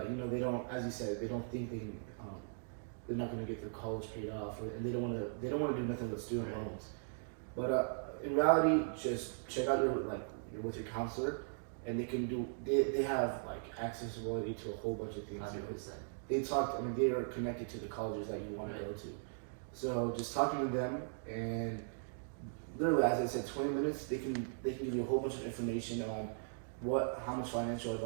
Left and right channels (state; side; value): silent; left; digital silence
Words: they don't, as you said, they don't think they're not going to get their college paid off, and they don't want to do nothing with student loans. But in reality, just check out your with your counselor, and they have like accessibility to a whole bunch of things. 100%. They are connected to the colleges that you want to go to. So just talking to them, and literally, as I said, 20 minutes, they can give you a whole bunch of information on how much financial